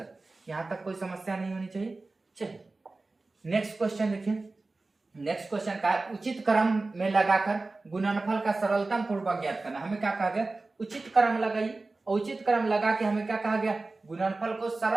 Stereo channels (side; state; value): left; quieter; 3.4 dB